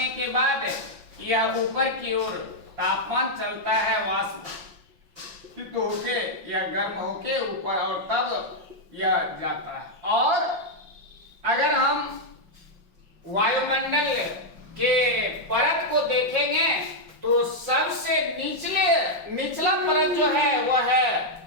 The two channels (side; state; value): left; late; 5.7 ms